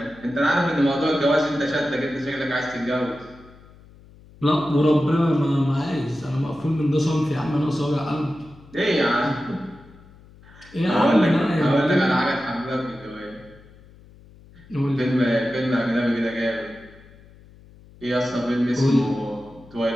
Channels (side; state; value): left; noise; hum, 24 dB below the sound